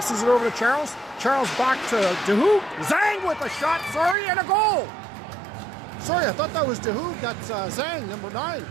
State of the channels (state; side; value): drops out; left; at 4.2 s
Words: it over to Charles. Charles back to DeHoop. Zhang with a shot, sorry, and a goal. Sorry, I thought that was DeHoop. That's Zhang, number 9.